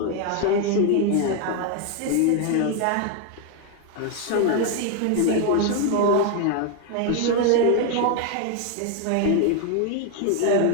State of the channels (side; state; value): both; different; correlation 0.00